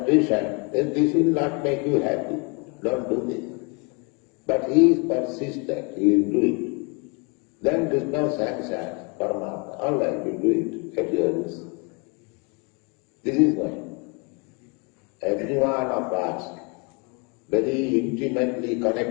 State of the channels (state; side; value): quieter; right; 32.3 dB